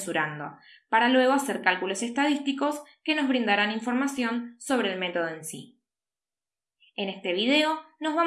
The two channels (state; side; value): identical; both; correlation 1.00